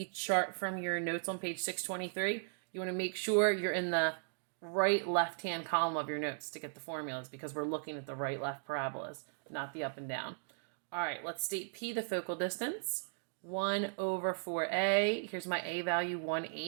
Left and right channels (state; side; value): silent; left; digital silence